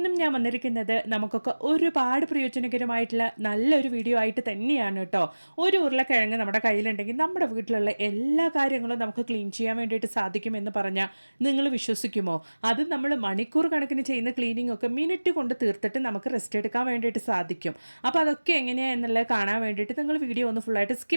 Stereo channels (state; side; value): inverted; both; correlation -1.00